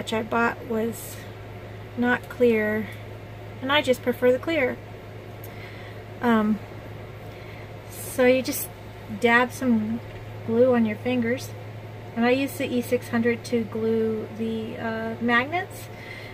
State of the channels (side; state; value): both; identical; correlation 1.00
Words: I bought was not clear, and I just prefer the clear. So you just dab some glue on your fingers, and I use the E600 to glue the magnets,